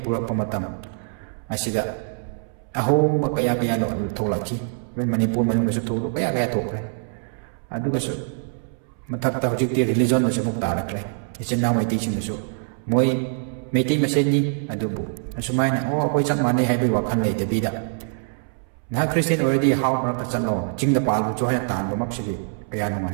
purak pamatam asida ahom kaya no tholaki men Manipur manung su tholu kaya thokre aduga su mathakta hojikti religion na samuk tarakle ichinnaw mai teaching su moi meiti meseni adubu asumaina akoi chak mane haibai wakhan lei debida na Christian already how mark chano jingda palu cho haya tan bamak sigi kaya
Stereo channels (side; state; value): left; silent; 63 dB below the other